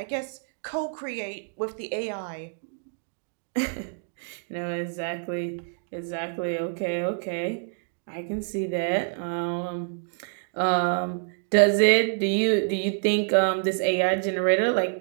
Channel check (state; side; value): silent; left; digital silence